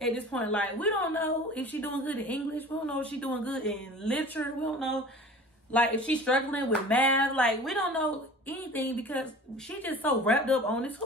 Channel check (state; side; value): normal; both; correlation 0.41